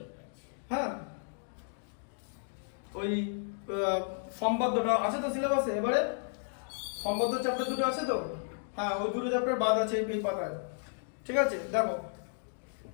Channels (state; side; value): silent; right; digital silence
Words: হ্যাঁ ওই সম্পাদ্যটা আছে তো সিলেবাসে, এবারে সম্পাদ্য চ্যাপ্টার দুটো আছে তো, হ্যাঁ ওই দুটো চ্যাপ্টার বাদ আছে এই পাতায়, ঠিক আছে। দেখো